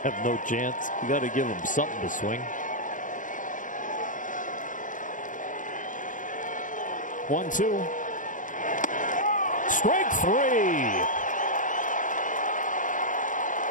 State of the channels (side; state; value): right; late; 0.38 ms